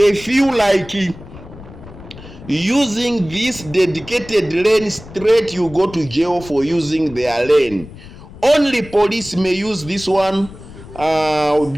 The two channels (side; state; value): left; noise; rumble, 17 dB below the sound